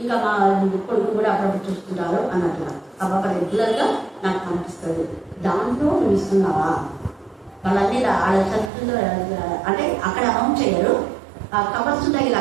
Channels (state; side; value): drops out; left; at 8.7 s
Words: ఇంకా మా కొడుకు కూడా అప్పుడప్పుడు చూస్తుంటారు అన్నట్లుగా. ఆ పాప రెగ్యులర్గా నాకు కనిపిస్తుంది. దాంట్లో నువ్వు ఇస్తున్నావా? వాళ్ళన్నీ వాళ్ళ చదువుతుందో అంటే అక్కడ అమౌంట్ చేయరు, కవర్స్ ఉంటాయి ఇలా